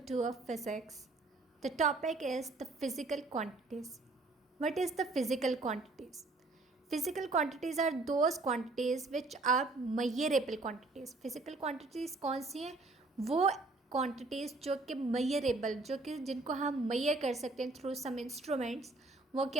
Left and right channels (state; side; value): quieter; left; 3.3 dB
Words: of physics. The topic is the physical quantities. What is the physical quantities? Physical quantities are those quantities which are measurable quantities. Physical quantities कौन सी हैं? वो quantities जो कि measurable, जो कि जिनको हम measure कर सकते हैं through some instruments, वो